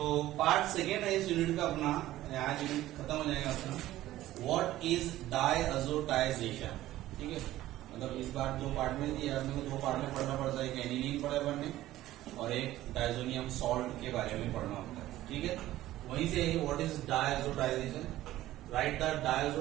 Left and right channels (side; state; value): left; quieter; 15.0 dB